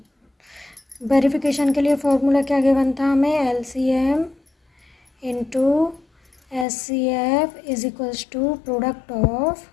वेरिफिकेशन के लिए फॉर्मूला क्या गिवन था हमें? LCM into HCF is equals to product of,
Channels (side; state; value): right; drops out; at 6.7 s